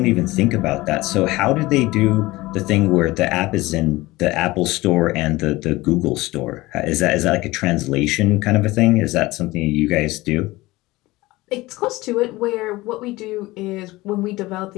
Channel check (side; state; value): right; quieter; 19.8 dB